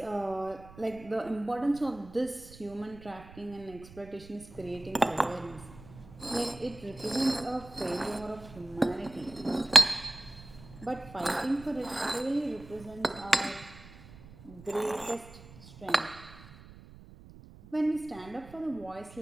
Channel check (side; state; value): right; noise; rumble, 19 dB below the sound